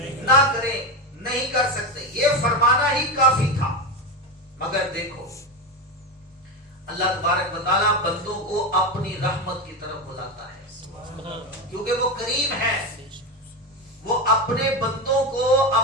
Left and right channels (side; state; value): both; normal; correlation 0.16